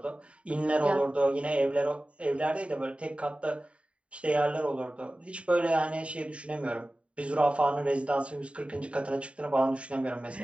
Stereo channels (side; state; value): left; late; 0.062 ms